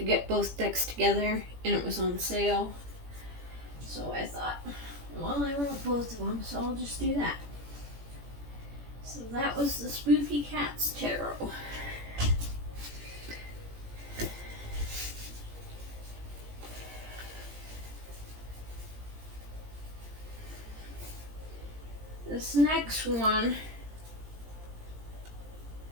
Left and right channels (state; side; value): late; left; 17 ms